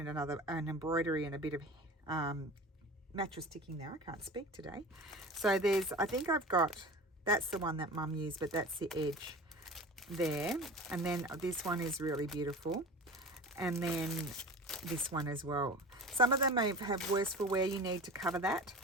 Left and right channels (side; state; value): both; normal; correlation 0.35